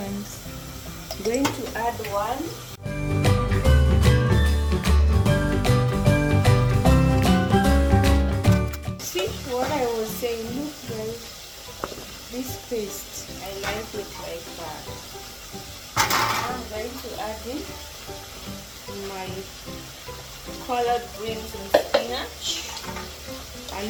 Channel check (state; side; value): identical; both; correlation 1.00